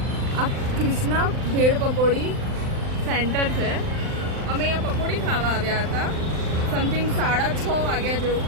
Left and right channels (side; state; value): left; late; 39 ms